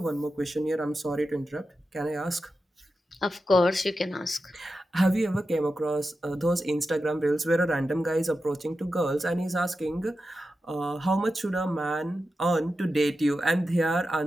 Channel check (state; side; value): normal; both; correlation 0.91